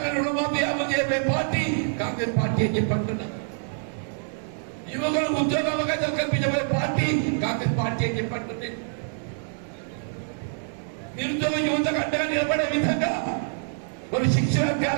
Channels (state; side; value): silent; left; digital silence